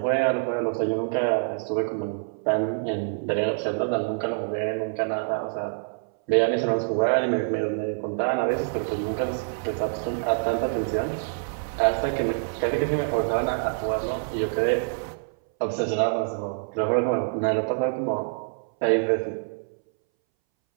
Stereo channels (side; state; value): left; silent; 61 dB below the other